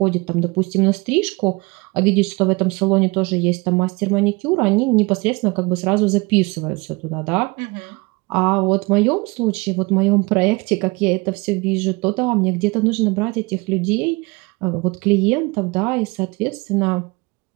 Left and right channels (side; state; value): left; quieter; 26.2 dB